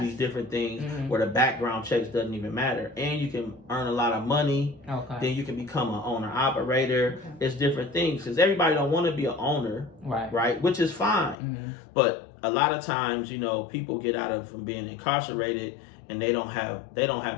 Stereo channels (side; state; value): right; drops out; at 11.4 s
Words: do these different things where the background checks doesn't even matter, and you can earn a lot of money. Then you can become an owner operator. It's different things, because everybody don't want to be an owner, right? Which is fine, but a lot of times people get out from being incarcerated and they don't